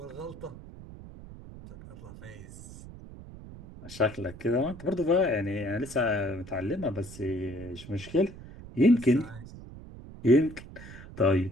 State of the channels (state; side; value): noise; right; rumble, 15 dB below the sound